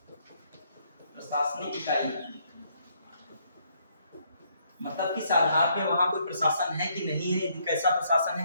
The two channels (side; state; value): both; inverted; correlation -0.71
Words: प्रशासनिक इकाई मतलब किस आधार पे वहां कोई प्रशासन है कि नहीं है, कैसा प्रशासन